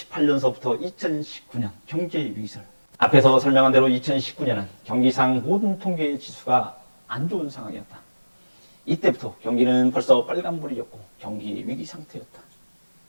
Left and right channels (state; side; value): inverted; both; correlation -1.00